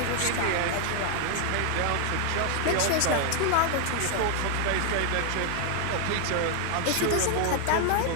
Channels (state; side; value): different; both; correlation 0.00